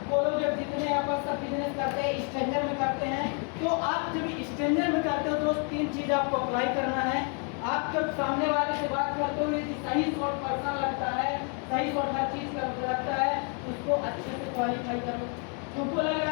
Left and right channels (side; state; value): right; quieter; 39.8 dB